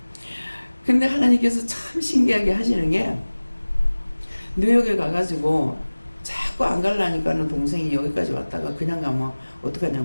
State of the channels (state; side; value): inverted; both; correlation -1.00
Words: 근데 하나님께서 참 신기하게 하시는 게, 뉴욕에 가가지고 자꾸 안 가려니까는 동생이 여기까지 왔다가 그냥 가면